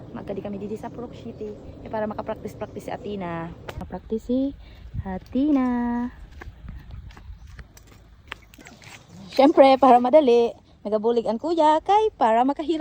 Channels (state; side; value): identical; both; correlation 1.00